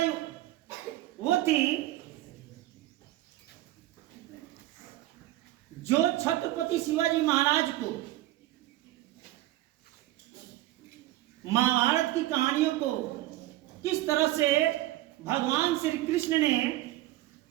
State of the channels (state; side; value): quieter; left; 16.0 dB